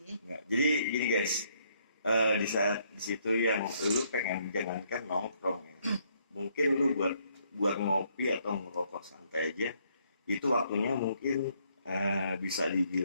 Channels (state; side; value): inverted; both; correlation -0.70